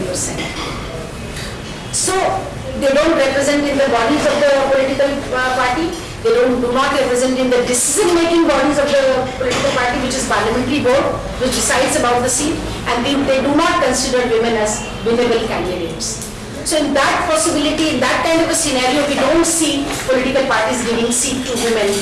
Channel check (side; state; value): both; identical; correlation 1.00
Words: So they don't represent in the bodies of the political party. They do not represent in the decision-making bodies of the political party, which is parliamentary board, which decides about the seat, and they do not consider women as winnable candidates. So in that possibility, in that kind of a scenario, we don't see political parties giving seat to women